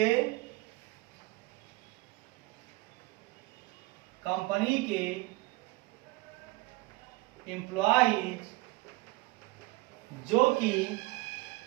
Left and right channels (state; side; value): quieter; left; 21.8 dB